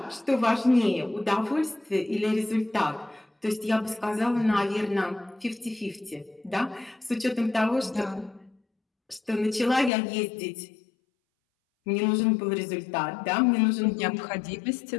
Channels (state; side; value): drops out; right; at 9.9 s